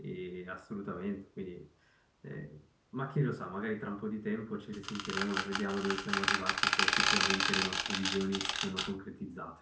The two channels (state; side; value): identical; both; correlation 1.00